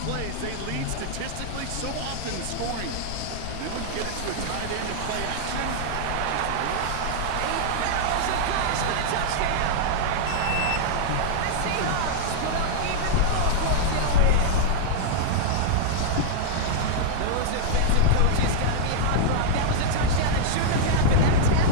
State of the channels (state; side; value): different; both; correlation -0.02